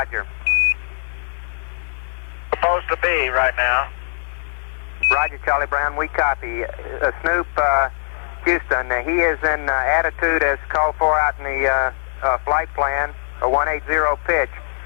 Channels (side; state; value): right; silent; digital silence